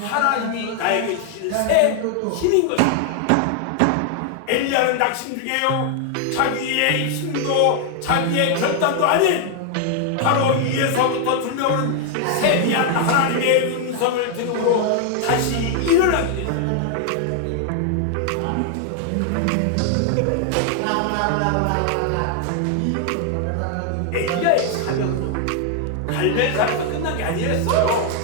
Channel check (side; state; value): both; different; correlation 0.00